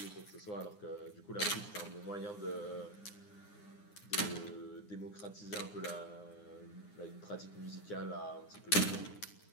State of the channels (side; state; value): right; late; 9.7 ms